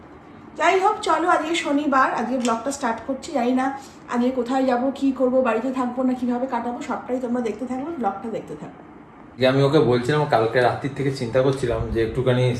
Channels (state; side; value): identical; both; correlation 1.00